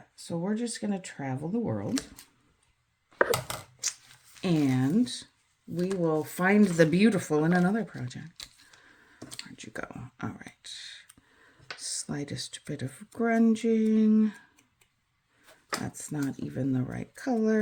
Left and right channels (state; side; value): identical; both; correlation 1.00